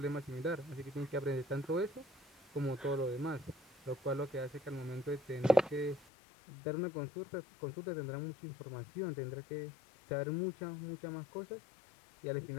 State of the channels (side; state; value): right; drops out; at 6.1 s